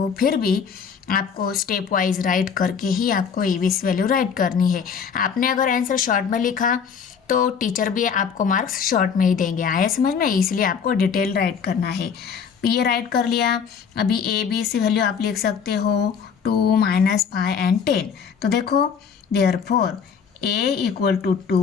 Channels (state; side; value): quieter; right; 6.7 dB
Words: फिर भी आपको स्टेप वाइज राइट करके ही आपको a B C value write करनी है। आपने अगर आंसर शॉर्ट में लिखा तो टीचर भी आपको मार्क्स शॉर्ट में ही देंगे। आया समझ में, इसलिए आपको डिटेल राइट करना है। ये राइट कर लिया। अभी ए बी सी वैल्यू आप लिख सकते हो 2 -5 एंड 10। तो देखो therefore A equal to